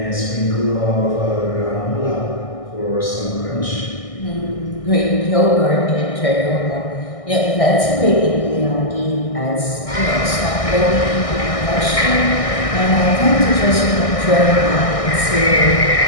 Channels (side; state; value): right; late; 1.6 ms